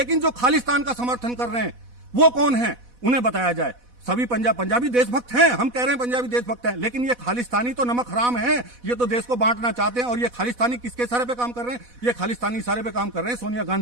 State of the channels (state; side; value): late; left; 4.1 ms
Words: जो खालिस्तान का समर्थन कर रहे हैं वो कौन है, उन्हें बताया जाए। सभी पंजाबी देशभक्त हैं, हम कह रहे हैं पंजाबी देशभक्त हैं, लेकिन ये खालिस्तानी तो नमक हराम है, ये तो देश को बांटना चाहते हैं। और ये खालिस्तानी किसके इशारे पे काम कर रहे हैं? ये खालिस्तानी इशारे पे काम कर रहे हैं सोनिया